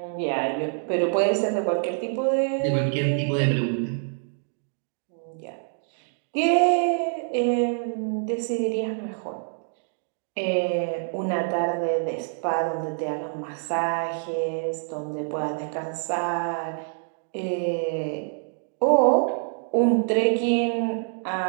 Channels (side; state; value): left; silent; digital silence